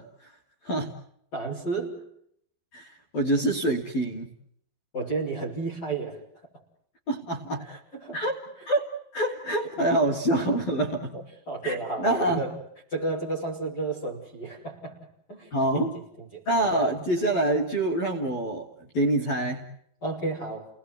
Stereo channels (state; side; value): late; right; 12 ms